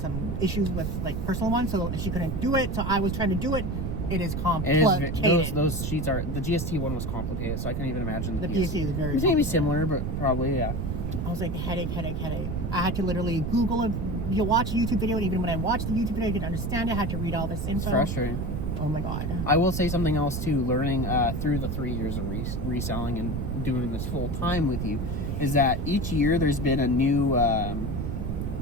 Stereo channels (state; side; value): noise; right; rumble, 2 dB below the sound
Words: issues with like personal ones, so she couldn't do it. So I was trying to do it. It is complicated. Those sheets are, the GST one was complicated, so I can't even imagine the PST is very. It's maybe similar, but probably I was like headache. I had to literally Google it. You watch a YouTube video, and even when I watched the YouTube video, I didn't understand it. I had to read all this info. It's frustrating. Oh my god. I will say something else too. Learning through the 3 years of reselling and doing this full time with you, is that each year there's been a new